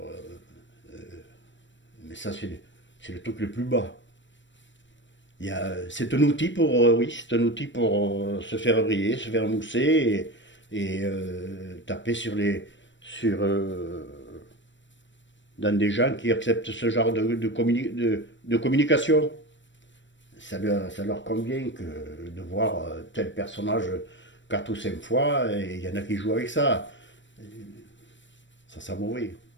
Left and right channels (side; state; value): right; late; 0.54 ms